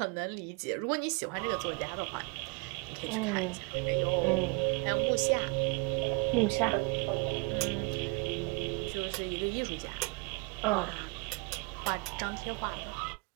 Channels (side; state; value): left; quieter; 30.0 dB